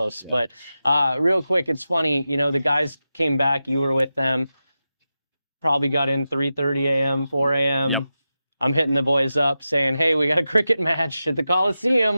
But real quick, it's funny, the guys came back, you were with them, probably got in 3:30 a.m., 4 a.m. Yep. I'm hitting the boys up saying, hey, we got a cricket match at the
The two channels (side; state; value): both; inverted; correlation -0.92